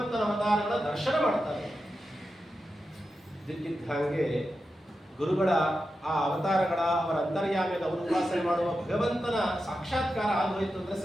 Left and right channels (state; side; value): normal; both; correlation 0.90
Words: ಅವತಾರಗಳ ದರ್ಶನ ಮಾಡ್ತಾರೆ. ಇದ್ದಕ್ಕಿದ್ದ ಹಾಗೆ ಗುರುಗಳ ಆ ಅವತಾರಗಳ, ಅವರ ಅಂತರ್ಯಾಮಿಯಾದ ಅವರು ಉಪಾಸನೆ ಮಾಡುವ ಭಗವಂತನ ಸಾಕ್ಷಾತ್ಕಾರ ಆಗೋಯ್ತು ಅಂದ್ರೆ